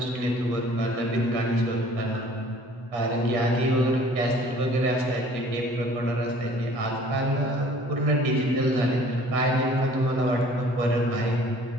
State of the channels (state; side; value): late; left; 8.0 ms